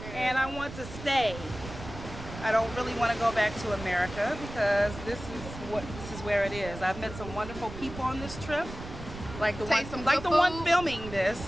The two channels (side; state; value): right; noise; rumble, 12 dB below the sound